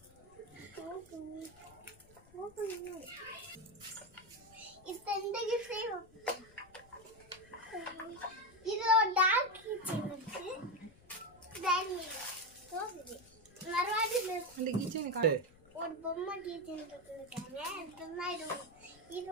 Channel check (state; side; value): noise; left; rumble, 25 dB below the sound